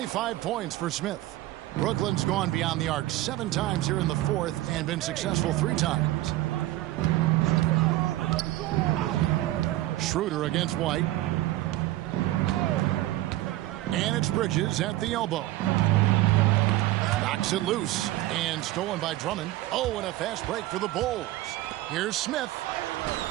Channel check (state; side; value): quieter; left; 16.3 dB